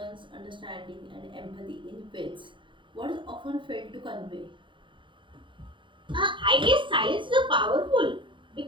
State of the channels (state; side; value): late; left; 0.24 ms